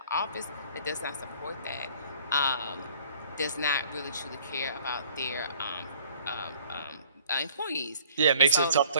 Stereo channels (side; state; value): both; inverted; correlation -0.55